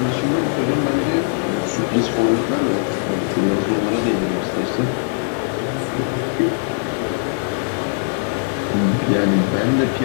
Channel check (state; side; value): silent; right; digital silence